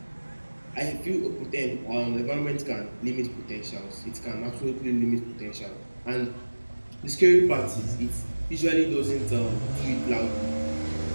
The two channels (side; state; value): both; inverted; correlation -1.00